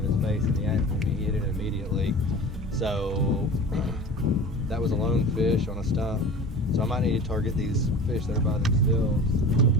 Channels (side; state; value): both; normal; correlation 0.38